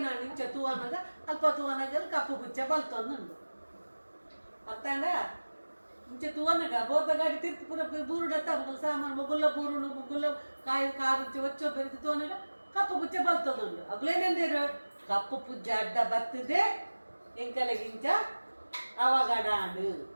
ನಾನು ಇಂಚ ತೂವನಾಗ ಅಲ್ಪ ತೂವನಾಗ ಕಪ್ಪು ಪುಚ್ಚೆ ಬಲ್ತೊಂದುಂಡು ಅರ್ಥಾಂಡ ಇಂಚ ತೂವನಾಗ ಬೋರ್ದ ಗಾಡಿ ತಿರ್ತಿ ಪೂರ ಬೂರುಡತ್ತ ಮಗಲು ಸಾಮಾನು ಮುಗುಲ್ಲ ಬೂರುಡು ಮುಗುಲ್ಲ ಕಾರು ಇಂಚ ಒಚ್ಚೋ ಬೆರೆತಿ ತೂವನಾಗ ಕಪ್ಪು ಪುಚ್ಚೆ ಬಲ್ತೊಂದುಂಡು ಅಗ್ಲೇನೇಂದೇರು ಕಪ್ಪು ಪುಜ್ಜೆ ಅಡ್ಡ ಬರ್ತದೆ ಎಂಕಲೆಗಿಂಚ ಅವಗಡಾಂಡು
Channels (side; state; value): both; inverted; correlation -1.00